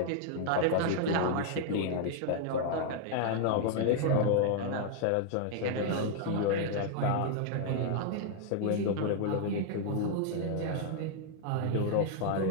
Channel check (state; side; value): different; both; correlation -0.01